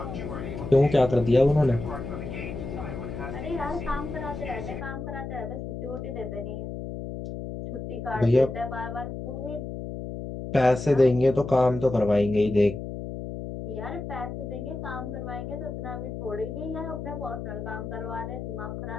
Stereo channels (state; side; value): noise; left; hum, 7 dB below the sound